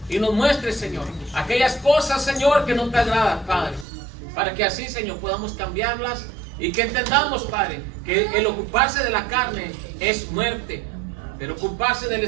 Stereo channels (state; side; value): drops out; left; at 3.9 s